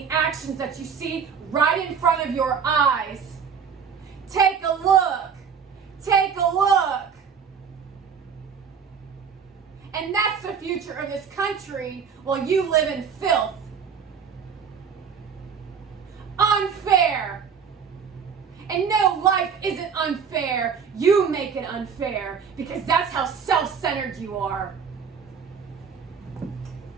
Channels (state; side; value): quieter; left; 6.6 dB